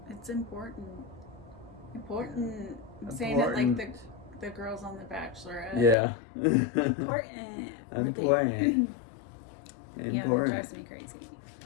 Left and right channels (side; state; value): right; drops out; at 6.0 s